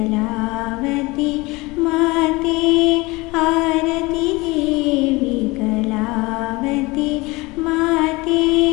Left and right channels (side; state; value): right; quieter; 23.2 dB